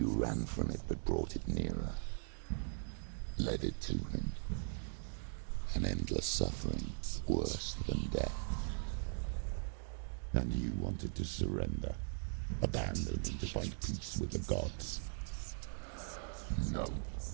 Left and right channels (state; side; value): silent; left; digital silence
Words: ran from it but brought it nearer. Led it to him. An endless suffering, worse than death. And you wanted to surrender, abandon and to find peace with the gods. No.